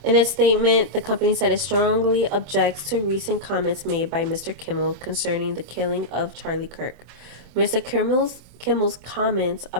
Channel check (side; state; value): left; late; 26 ms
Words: In its statement, the company said it strongly objects to recent comments made by Mr. Kimmel concerning the killing of Charlie Kirk. Mr. Kimmel's comments